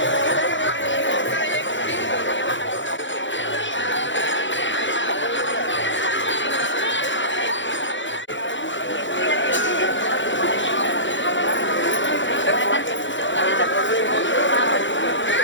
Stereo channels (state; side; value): late; right; 0.54 ms